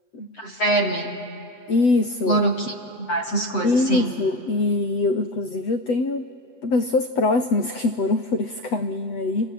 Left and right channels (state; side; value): late; right; 7.8 ms